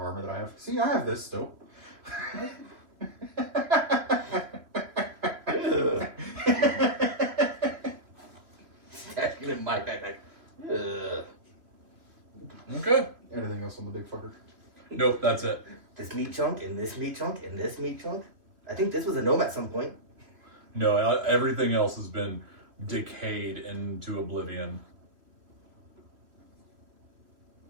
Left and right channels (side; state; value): left; late; 3.1 ms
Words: that I have. See, I have this still. Stash it in my backpack. Ugh. Okay. Anything else on the big fucker? Nope, that's it. This meat chunk and this meat chunk and this meat chunk. I think this was a gnome at some point. No, everything else has been decayed into oblivion.